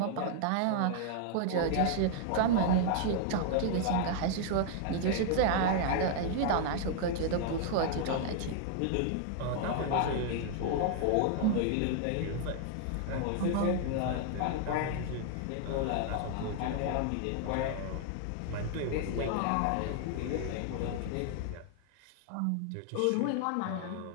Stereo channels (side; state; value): both; different; correlation 0.00